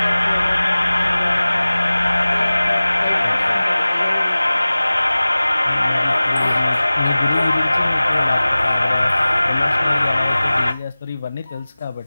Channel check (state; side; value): inverted; both; correlation -0.98